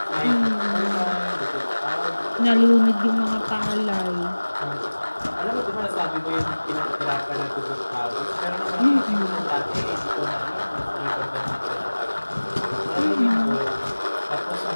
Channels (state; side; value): inverted; both; correlation -1.00